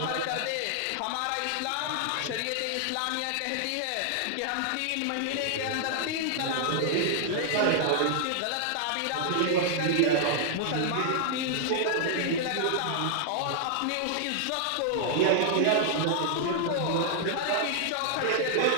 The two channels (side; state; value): both; different; correlation -0.01